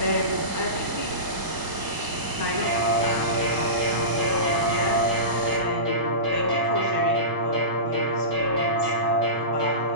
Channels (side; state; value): left; late; 1.0 ms